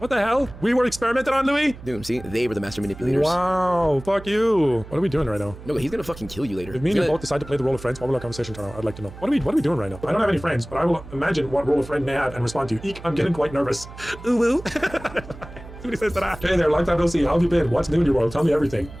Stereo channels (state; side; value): noise; right; hum, 16 dB below the sound